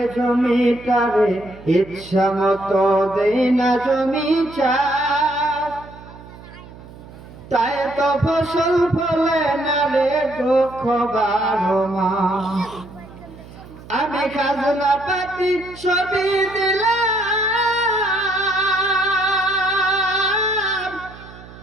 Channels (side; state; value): right; noise; hum, 18 dB below the sound